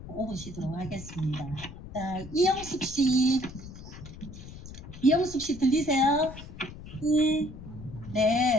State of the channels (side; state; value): left; noise; rumble, 14 dB below the sound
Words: 5분 쉬도록 하겠습니다. 자, 이영숙 씨 들리세요?